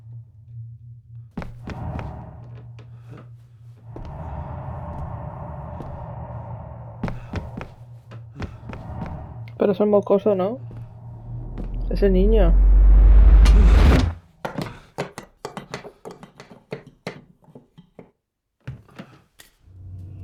Pero es el mocoso, ¿no? Ese niño.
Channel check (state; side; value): identical; both; correlation 1.00